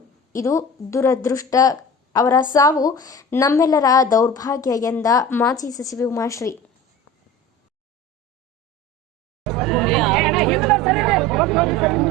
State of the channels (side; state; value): both; normal; correlation 0.36